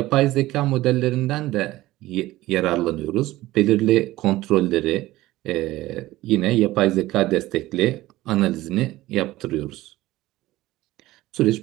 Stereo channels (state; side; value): quieter; left; 17.1 dB